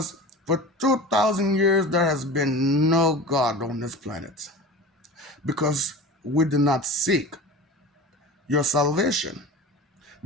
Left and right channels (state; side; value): normal; both; correlation 0.33